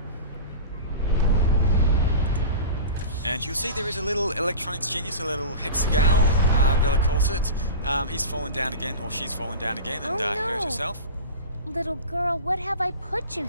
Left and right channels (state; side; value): inverted; both; correlation -0.31